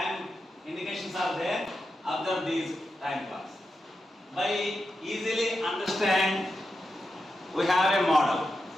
indications are there. Observe these time clocks. By easily understand, we have a model.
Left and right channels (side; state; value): both; normal; correlation 0.88